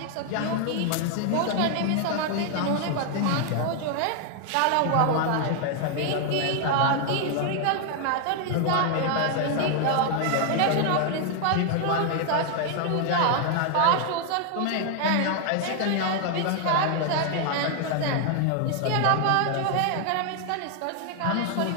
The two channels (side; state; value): both; different; correlation 0.00